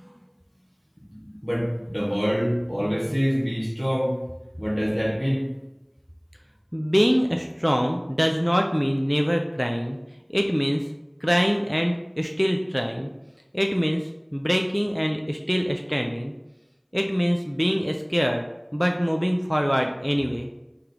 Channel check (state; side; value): identical; both; correlation 1.00